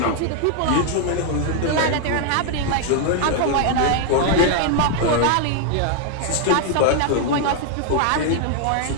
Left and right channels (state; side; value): different; both; correlation 0.00